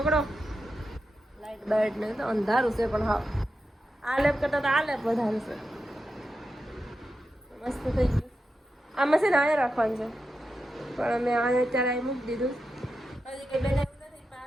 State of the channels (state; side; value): normal; both; correlation 0.89